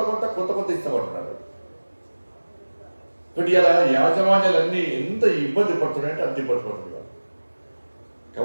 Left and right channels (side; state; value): both; inverted; correlation -1.00